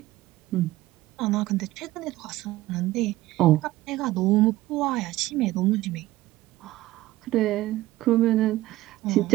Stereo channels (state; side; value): quieter; left; 16.7 dB